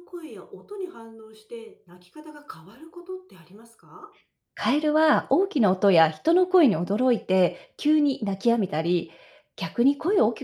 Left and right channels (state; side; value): identical; both; correlation 1.00